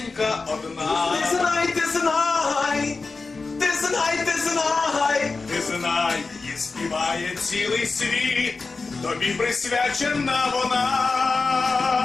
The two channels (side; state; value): right; quieter; 4.1 dB